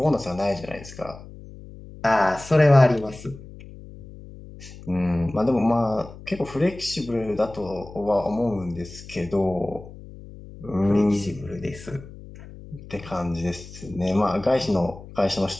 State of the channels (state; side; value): noise; left; hum, 16 dB below the sound